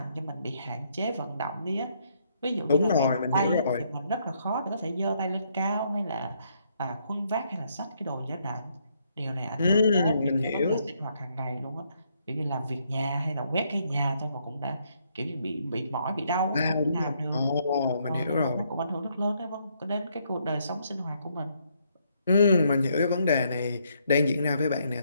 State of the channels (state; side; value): inverted; both; correlation -0.73